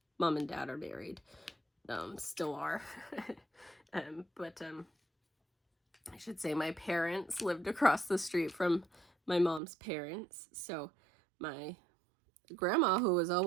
mom and dad are married. Still are. But I should say my parents lived across the street from my mom's parents. So my grandma, who was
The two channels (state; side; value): drops out; left; at 9.6 s